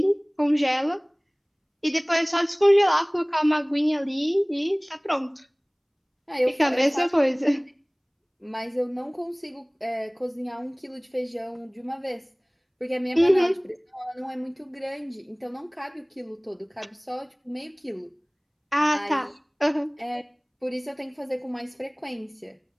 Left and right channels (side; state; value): both; identical; correlation 1.00